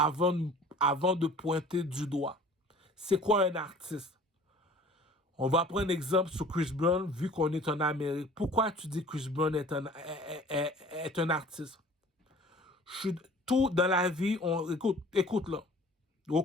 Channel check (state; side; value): normal; both; correlation 0.48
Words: de pointer du doigt? C'est quoi un artiste? On va prendre un exemple sur Chris Brown, vu qu'on est en Amérique. Pourquoi tu dis Chris Brown est un artiste? Tout dans la vie, écoute là. Au